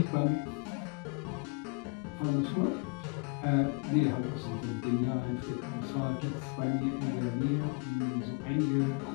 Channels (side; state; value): right; quieter; 31.8 dB